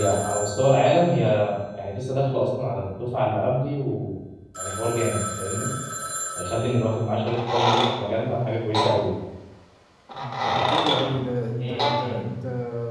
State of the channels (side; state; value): both; identical; correlation 1.00